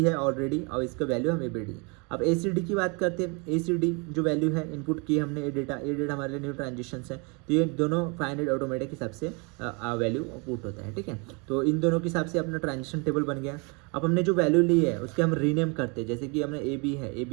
है ऑलरेडी और इसका वैल्यू हम ए बी डी। अब ए सी डी की बात करते हैं। ए सी डी जो वैल्यू है इनपुट की हमने, ये डेटा हमारे लिए न्यू ट्रांजेक्शन है, तो ये दोनों 500 ऑटोमेटिक हिसाब से वैल्यू पुट होता है, ठीक है। तो इन दोनों के हिसाब से अपना ट्रांजेक्शन टेबल बन गया। अब हमने जो वैल्यू ली है उसके हम रीनेम करते हैं, जैसे कि हमने ए बी है, ए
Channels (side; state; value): left; quieter; 31.6 dB